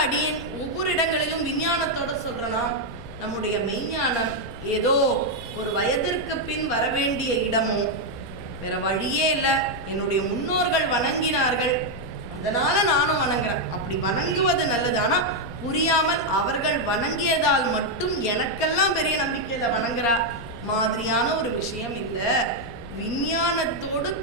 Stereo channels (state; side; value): noise; left; rumble, 15 dB below the sound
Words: அடி ஒவ்வொரு இடங்களிலும் விஞ்ஞானத்தோட சொல்றனா, நம்முடைய மெய்ஞானம் ஏதோ ஒரு வயதிற்கு பின் வரவேண்டிய இடமோ வேற வழியே இல்லை, என்னுடைய முன்னோர்கள் வணங்கினார்கள், அதனால நானும் வணங்குறேன். அப்படி வணங்குவது நல்லது. ஆனா புரியாமல் அவர்கள் வணங்கியதால் மட்டும் எனக்கெல்லாம் பெரிய நம்பிக்கையில வணங்குறா மாதிரியான ஒரு விஷயம் இல்லை. விஞ்ஞானத்தோடு